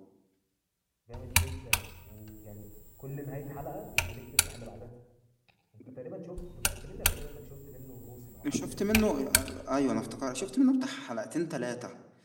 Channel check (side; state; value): both; identical; correlation 1.00